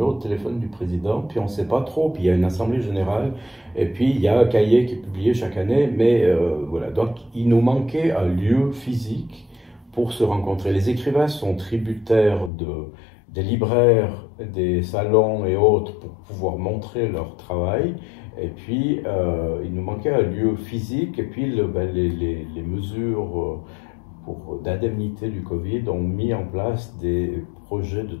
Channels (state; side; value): drops out; right; at 12.5 s